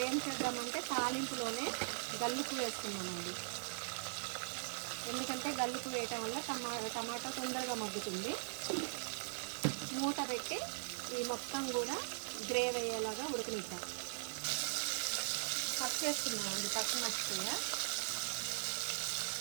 ఏం చేద్దామంటే తాలింపులోనే గల్లుపు వేస్తున్నామండి. ఎందుకంటే గల్లుపు వేయటం వల్ల టమాటా తొందరగా మగ్గుతుంది. మూత పెట్టి ఈ మొత్తం కూడా గ్రేవీ అయ్యేలాగా ఉడకనిద్దాం. ఫస్ట్ వేస్తున్నామండి పచ్చిమిరపకాయ.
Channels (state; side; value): silent; left; digital silence